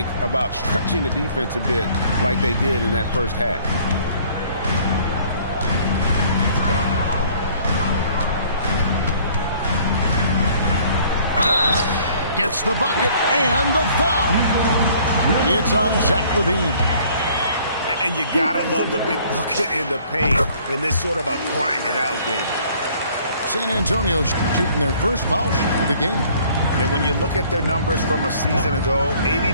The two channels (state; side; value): inverted; both; correlation -0.57